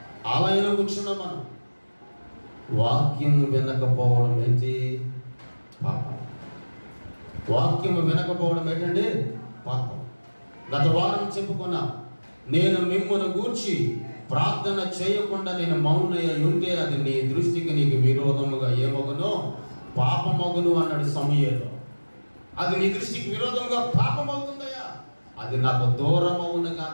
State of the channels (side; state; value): both; inverted; correlation -1.00